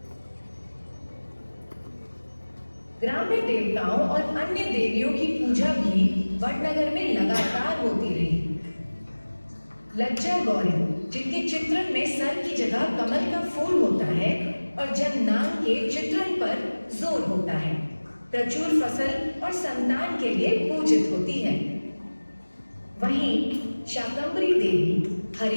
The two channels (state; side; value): inverted; both; correlation -1.00